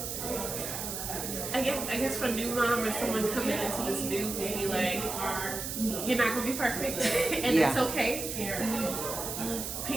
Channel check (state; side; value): noise; right; hiss, 5 dB below the sound